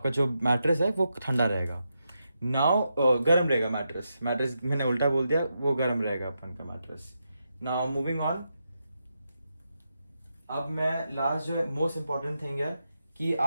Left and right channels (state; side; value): inverted; both; correlation -0.85